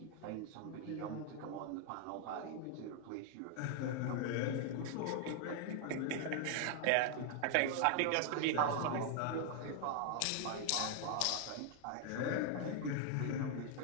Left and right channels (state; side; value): different; both; correlation 0.00